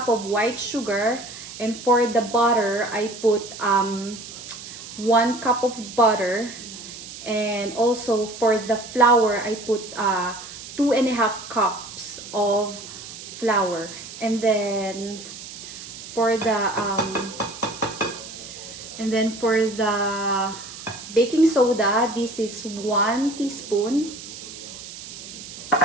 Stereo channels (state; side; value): noise; right; hiss, 13 dB below the sound